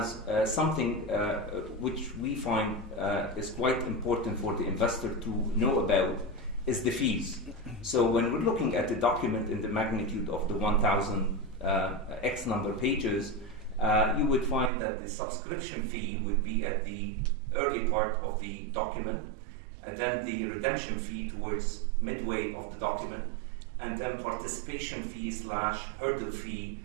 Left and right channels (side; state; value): left; drops out; at 14.7 s